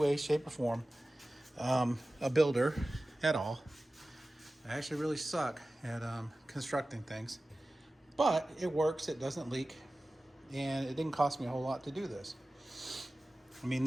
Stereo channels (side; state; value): both; normal; correlation 0.96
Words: shape, or form a builder at all. I actually really suck at constructing things, but it works, it doesn't leak, and it didn't cost me a whole lot to do this. I mean,